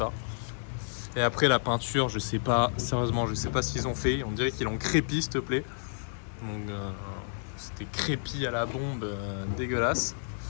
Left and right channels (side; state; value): right; silent; 58 dB below the other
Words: Et après, la peinture, je sais pas, sérieusement, je sais pas ce qu'ils ont fait. On dirait qu'ils l'ont crépi, s'il te plaît. Donc, c'était crépi à la bombe, dégueulasse.